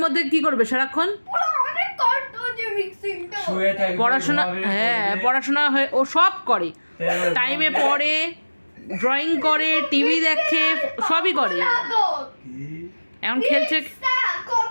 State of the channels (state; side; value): inverted; both; correlation -1.00